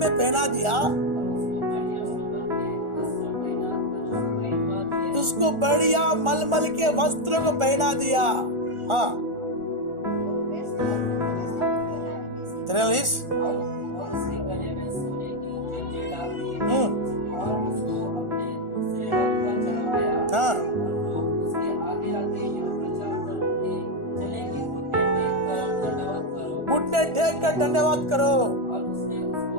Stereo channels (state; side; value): late; left; 1.4 ms